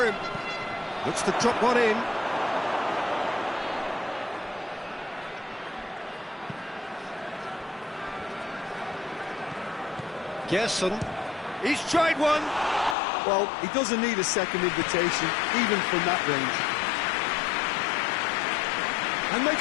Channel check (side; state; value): right; drops out; at 13.0 s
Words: him. Looks to drop one in. Gerson. He's tried one. Well, he doesn't need a second invitation, even from that range. And they